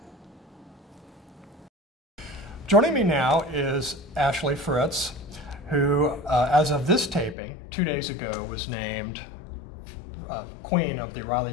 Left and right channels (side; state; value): right; drops out; at 7.4 s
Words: Joining me now is Ashley Fritz, who, as of this taping, 2 days ago, was named Queen of the